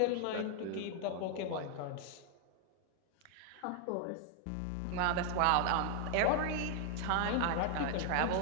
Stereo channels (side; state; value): both; different; correlation 0.00